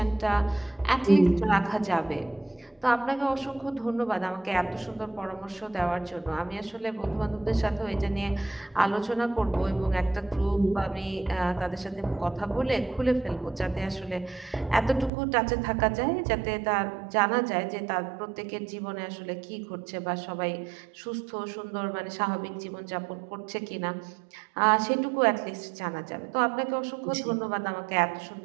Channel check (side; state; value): left; drops out; at 15.1 s